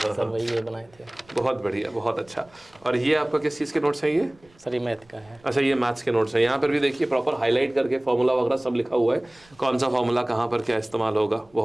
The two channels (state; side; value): noise; right; rumble, 30 dB below the sound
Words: सर वही ये बनाए थे। बहुत बढ़िया, बहुत अच्छा। और ये आपका किस चीज़ के नोट्स हैं ये? सर ये मैथ का है। अच्छा, ये मैथ्स के नोट्स हैं। यहाँ पर भी देखिए प्रॉपर हाईलाइट करके फॉर्मूला वगैरह सब लिखा हुआ है, कौन सा फॉर्मूला कहाँ पर क्या इस्तेमाल होगा।